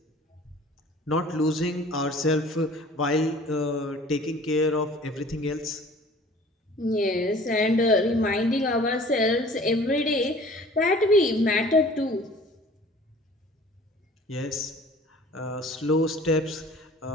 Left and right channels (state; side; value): normal; both; correlation 0.49